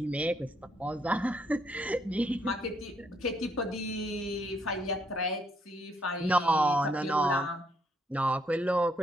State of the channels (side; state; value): both; normal; correlation 0.72